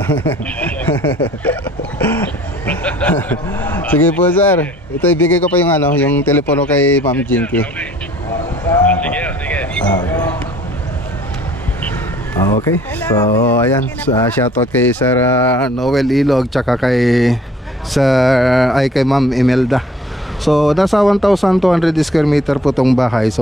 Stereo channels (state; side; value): normal; both; correlation 0.54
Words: Sige po, sir. Ito ibigay ko pa yung yung telepono kay Ma'am Jinky. Sige. Okay. So, ayan. Shoutout kay Sir Noel Ilog tsaka kay kay Ma'am Imelda. So, nasa 1,200 square meter po tong bahay.